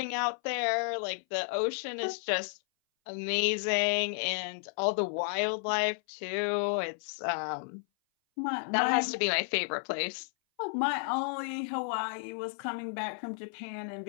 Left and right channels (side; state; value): right; silent; 56 dB below the other